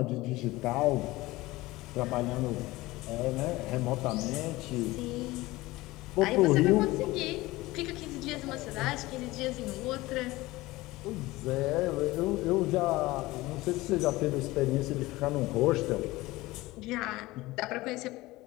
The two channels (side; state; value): right; quieter; 19.5 dB